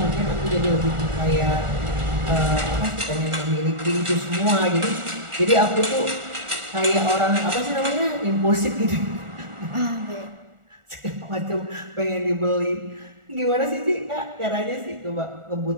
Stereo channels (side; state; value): left; late; 1.4 ms